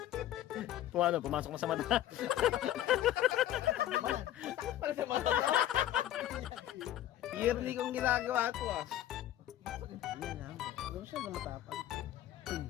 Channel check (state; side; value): quieter; right; 12.8 dB